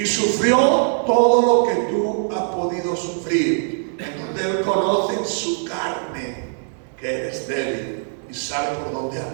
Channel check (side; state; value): left; silent; digital silence